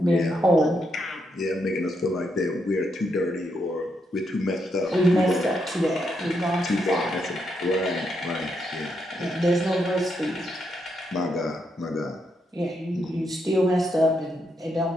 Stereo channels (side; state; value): both; normal; correlation 0.80